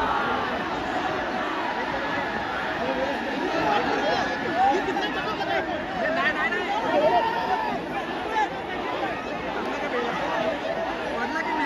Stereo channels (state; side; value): identical; both; correlation 1.00